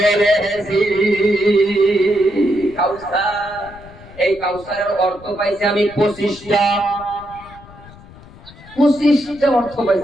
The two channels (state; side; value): noise; left; rumble, 20 dB below the sound